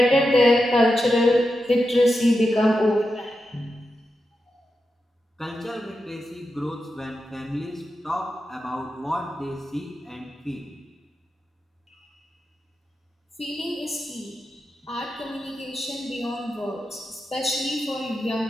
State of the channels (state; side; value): normal; both; correlation 0.88